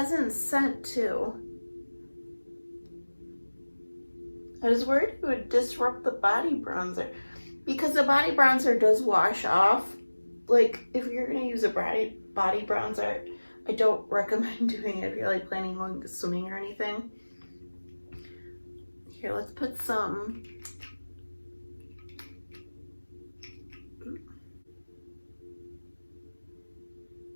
scent too. I was worried it would disrupt the body bronzer, because the body bronzer does wash off. Like, if you're gonna use a body bronzer, I don't recommend doing it if you're like planning on swimming or anything. Here, let's put some.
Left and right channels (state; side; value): inverted; both; correlation -1.00